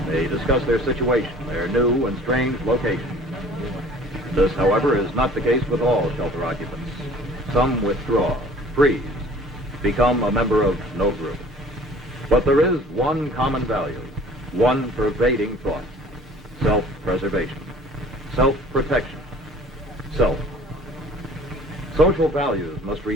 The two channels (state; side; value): normal; both; correlation 0.50